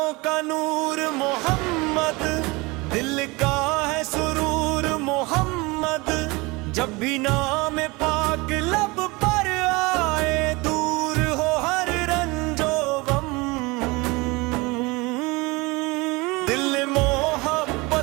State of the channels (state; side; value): quieter; left; 24.6 dB